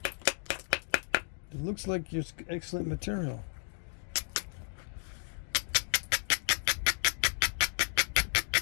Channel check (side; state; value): right; silent; 56 dB below the other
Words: It looks like it's excellent material.